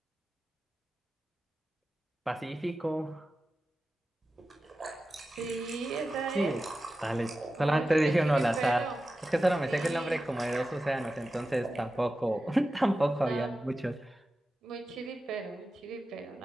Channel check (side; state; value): both; normal; correlation 0.93